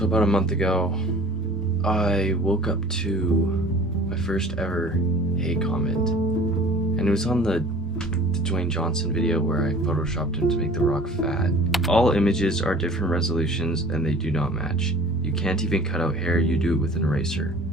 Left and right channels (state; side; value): normal; both; correlation 0.46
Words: about a month ago, I woke up to my first ever hate comment, and it was on the Dwayne Johnson video where I photoshopped him to make The Rock fat. All images are different resolutions and they do not match. You can't even cut out hair, you do it with an eraser.